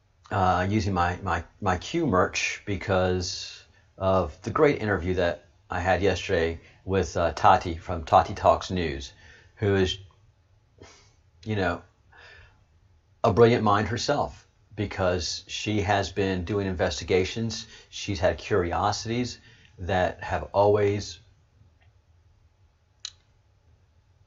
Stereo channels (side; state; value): both; identical; correlation 1.00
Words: using my Q merch because of the great interview that I had yesterday with Tati from Tati Talks News, who is, a brilliant mind herself, because she has been doing investigations. She's had curiosities that have always